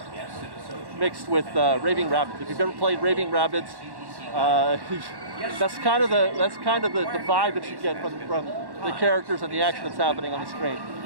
mixed with Raving Rabbids. If you've ever played Raving Rabbids, that's kind of the vibe that you get from the characters and the action that's happening on the screen.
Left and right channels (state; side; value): late; left; 1.1 ms